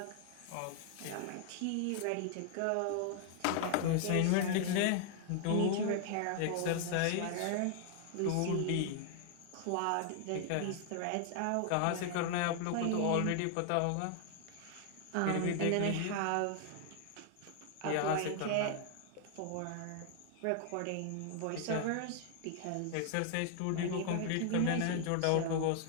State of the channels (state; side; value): different; both; correlation 0.00